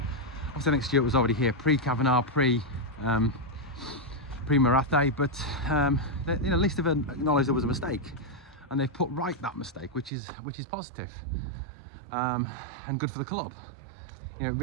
Obviously I think Stewart was already here pre-Kavanagh, pre-Marathe, but at least they've acknowledged there was a mistake, and they've put right that mistake, which is positive, and good for the club. It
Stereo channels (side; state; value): left; drops out; at 10.1 s